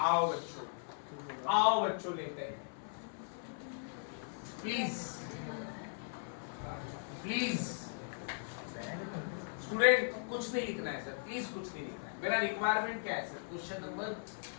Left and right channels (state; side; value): silent; right; 52 dB below the other